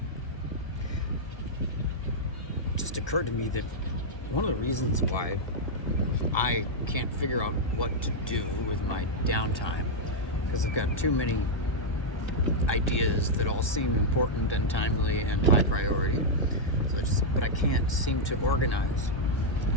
It just occurred to me that one of the reasons why I can't figure out what to do with my downtime, because I've got too many ideas that all seem important and timely and high priority. But I can't seem to organize.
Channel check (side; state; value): right; late; 1.2 ms